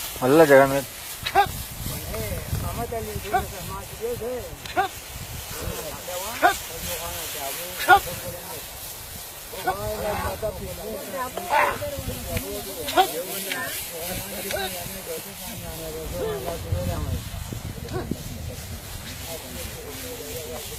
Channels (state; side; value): identical; both; correlation 1.00